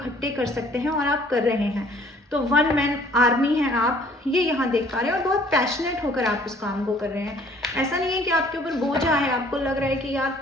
कर सकते हैं और आप कर रहे हैं। तो 1 मैन आर्मी है आप, ये यहाँ देख पा रहे हैं, और बहुत पैशनेट होकर आप उस काम को कर रहे हैं। ऐसा नहीं है कि आपके ऊपर बोझ है, आपको लग रहा है कि यार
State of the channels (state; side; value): normal; both; correlation 0.57